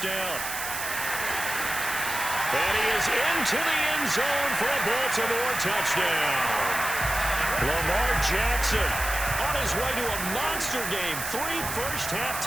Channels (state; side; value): noise; right; hiss, 5 dB below the sound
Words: down. And he is into the end zone for a Baltimore touchdown. Lamar Jackson on his way to a monster game. 3 first-half